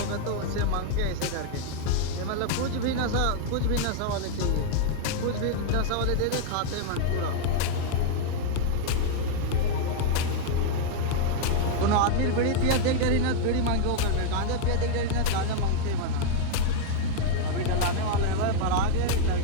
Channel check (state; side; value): different; both; correlation -0.01